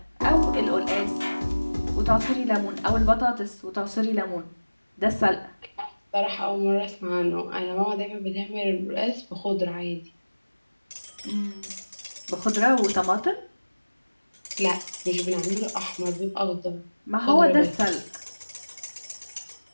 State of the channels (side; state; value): both; inverted; correlation -1.00